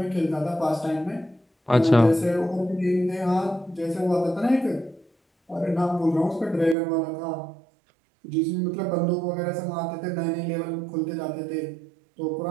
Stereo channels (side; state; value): left; drops out; at 6.8 s